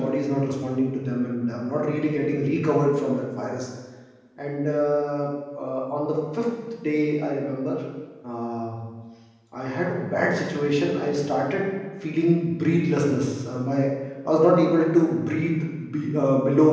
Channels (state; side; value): identical; both; correlation 1.00